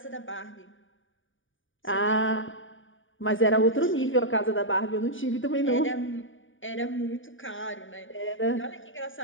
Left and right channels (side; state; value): right; late; 0.57 ms